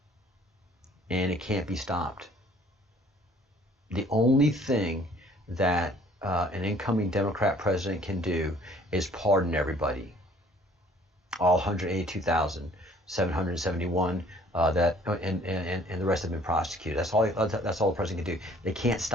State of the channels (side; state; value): both; normal; correlation 0.56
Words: and it can't be stopped. The only thing that an incoming Democrat president can do is pardon everybody. All 182,771 and the rest have been prosecuted. That's all the president can do. They can't